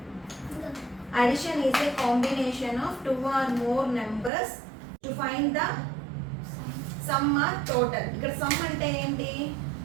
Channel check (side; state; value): left; drops out; at 4.3 s